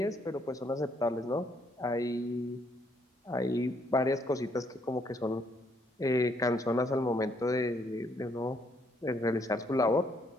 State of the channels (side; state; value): both; normal; correlation 0.70